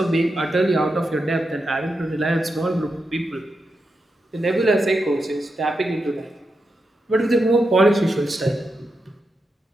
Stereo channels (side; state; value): both; normal; correlation 0.87